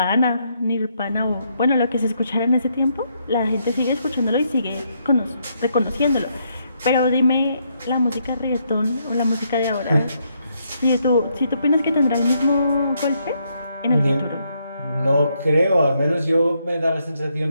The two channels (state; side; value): inverted; both; correlation -0.75